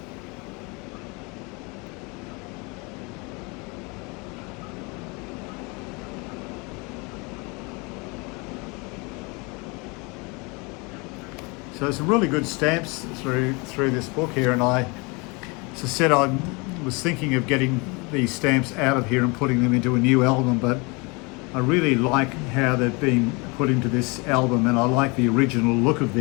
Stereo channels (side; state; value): right; quieter; 28.6 dB